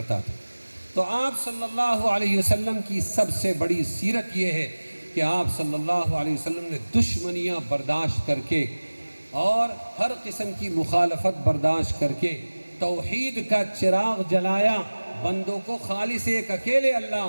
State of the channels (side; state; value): both; inverted; correlation -1.00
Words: تھا. تو آپ صلی اللہ علیہ وسلم کی سب سے بڑی سیرت یہ ہے کہ آپ صلی اللہ علیہ وسلم نے دشمنیاں برداشت کر کے اور ہر قسم کی مخالفت برداشت کر کے توحید کا چراغ جلایا, بندوں کو خالص ایک اکیلے اللہ